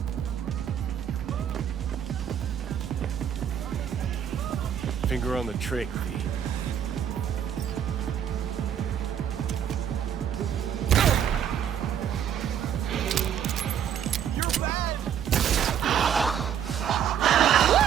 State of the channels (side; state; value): left; quieter; 9.0 dB